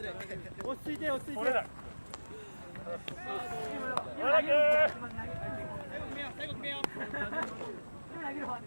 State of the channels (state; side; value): inverted; both; correlation -1.00